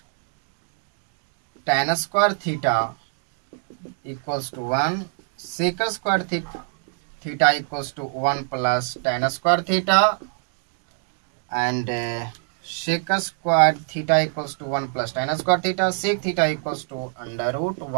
tan square theta equals to 1. Sec square theta equals to 1 plus tan square theta, and sec square theta equals to 1 plus tan square theta. Sec theta equals to under root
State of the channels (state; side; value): silent; left; 55 dB below the other